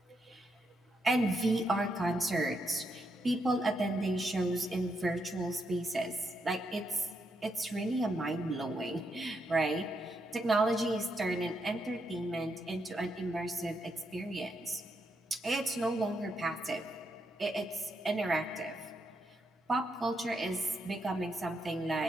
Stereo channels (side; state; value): both; normal; correlation 0.80